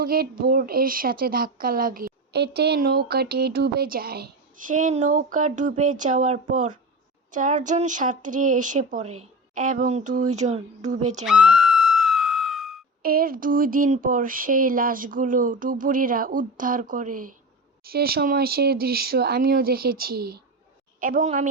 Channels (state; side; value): normal; both; correlation 0.26